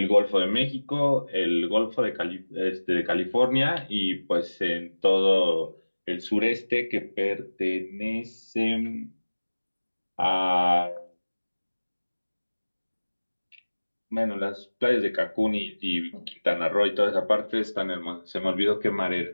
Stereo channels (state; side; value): inverted; both; correlation -1.00